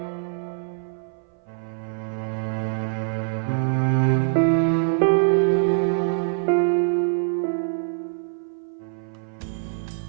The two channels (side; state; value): left; silent; 57 dB below the other